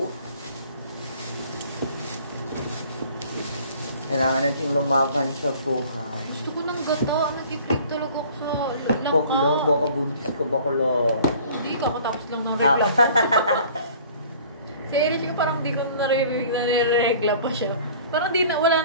Kailangan natin lumaban sa buhay. Gusto ko ng gata. Nag-i-crave talaga ako sa langka. Baklo, baka buntis ko, baklo. Hindi, kakatapos lang ng regla. Si Erich ko parang di ko naririnig na nire-regla pa siya. Parang di na, wala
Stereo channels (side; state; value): both; inverted; correlation -0.50